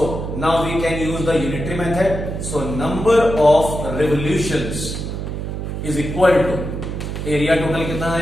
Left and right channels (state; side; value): noise; right; hum, 5 dB below the sound